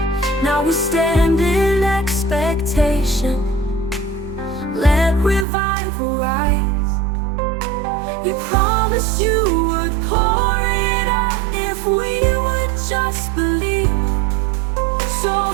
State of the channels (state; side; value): drops out; left; at 5.5 s